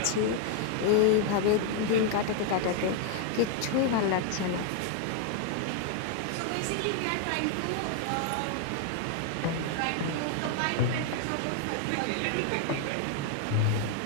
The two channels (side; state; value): both; different; correlation 0.00